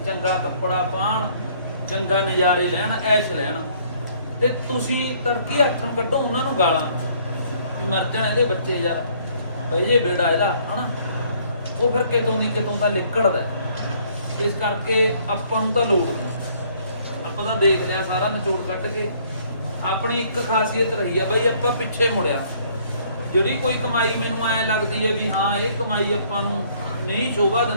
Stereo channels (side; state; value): both; inverted; correlation -0.62